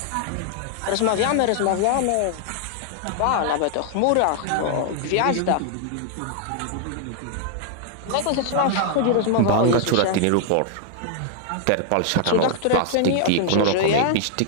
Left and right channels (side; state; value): both; different; correlation -0.01